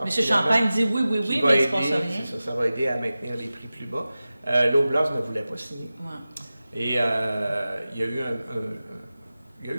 M. Champagne dit oui, mais il ne se passe rien. Ça va aider à maintenir les prix plus bas. L'Oblast ne voulait pas signer. Ouais. Et il y a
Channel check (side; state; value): both; inverted; correlation -0.95